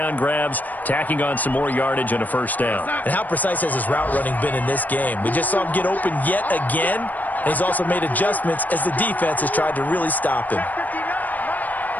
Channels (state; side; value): late; right; 0.082 ms